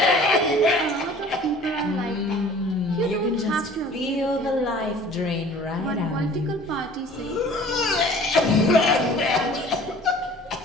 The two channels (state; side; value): normal; both; correlation 0.48